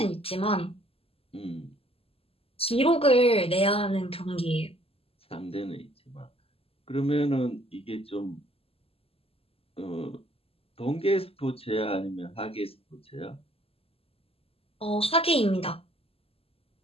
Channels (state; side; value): late; right; 0.28 ms